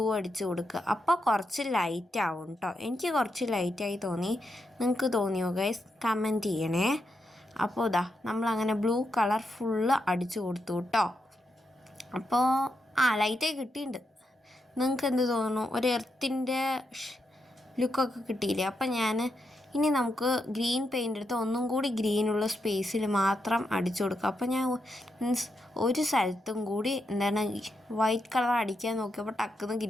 അടിച്ചു കൊടുക്കുക. അപ്പോൾ കുറച്ച് ലൈറ്റ് ആവും കേട്ടോ. എനിക്ക് കുറച്ച് ലൈറ്റായി തോന്നി. നിങ്ങൾക്ക് തോന്നിയോ ഗൈസ്? കമൻറ്റ് ചെയ്യണേ. അപ്പോൾ ഇതാ നമ്മളങ്ങനെ ബ്ലൂ കളർ ഫുള്ള് അടിച്ചു കൊടുത്തു കേട്ടോ. അപ്പോൾ ലൈറ്റായി കിട്ടിയിട്ടുണ്ട്. നിങ്ങൾക്ക് എന്ത് തോന്നുന്നു? ഒരു എർത്തിൻ്റെ ലുക്കൊക്കെ കിട്ടിയില്ലേ? അപ്പം ഇനി നമുക്ക് ഗ്രീൻ പെയിൻ്റ് എടുത്ത് ഒന്നും കൂടി ഗ്രീനുള്ള സ്പേസിൽ മാത്രം അടിച്ചു കൊടുക്കുക. അപ്പം ഞാൻ ഒരു സ്ഥലത്തും കൂടി വൈറ്റ് കളർ അടിക്കാൻ നോക്കിയപ്പോൾ ടക്കുന്ന്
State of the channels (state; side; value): normal; both; correlation 0.83